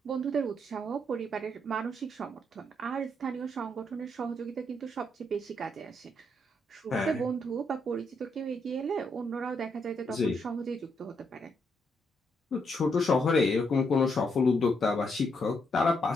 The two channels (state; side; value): normal; both; correlation 0.77